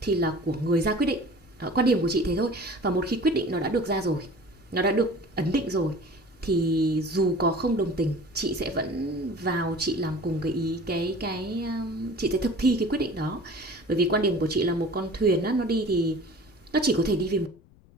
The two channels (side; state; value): left; noise; rumble, 28 dB below the sound